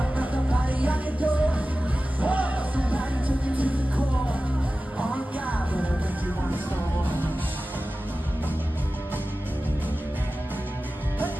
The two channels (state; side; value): normal; both; correlation 0.95